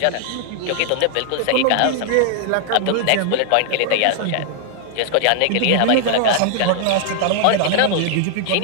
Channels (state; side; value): different; both; correlation 0.00